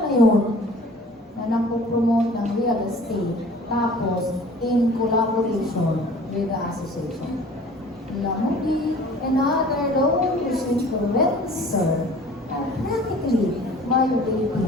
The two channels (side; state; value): both; normal; correlation 0.47